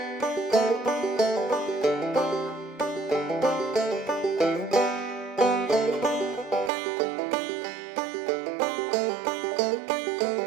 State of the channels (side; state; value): left; drops out; at 6.7 s